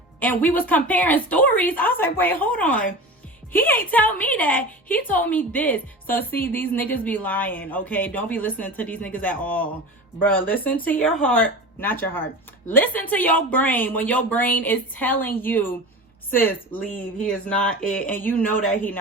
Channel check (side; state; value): both; normal; correlation 0.31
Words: and we was comparing stories, I was like, wait, hold on. He ain't tell me that. He told me this. So see, these niggas be lying, okay? Don't be listening to these niggas at all. Bro, listen to your heart. Not your heart. Listen to your brain when your brain is telling you, sis, leave. He is not it. And you know that he